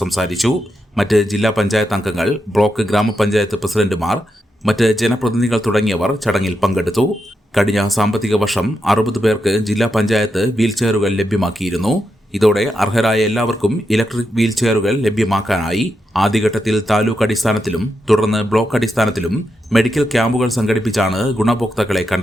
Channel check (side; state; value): both; normal; correlation 0.85